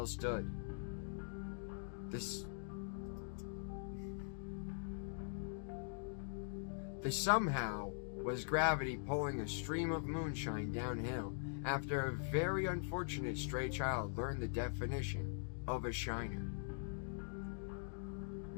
stood. This somehow was gravity pulling a stream of moonshine downhill after a very unfortunate stray child learned the definition of a shiner.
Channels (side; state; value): right; silent; digital silence